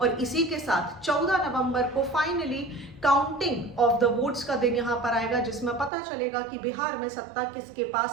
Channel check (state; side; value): drops out; left; at 5.9 s